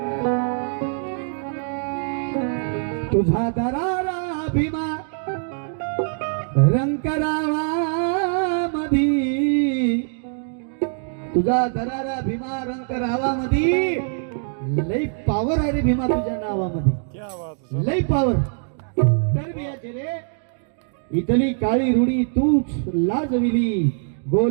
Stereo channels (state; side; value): silent; left; 62 dB below the other